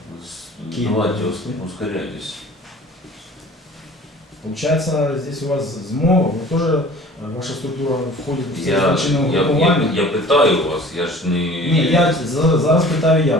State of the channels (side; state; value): both; normal; correlation 0.46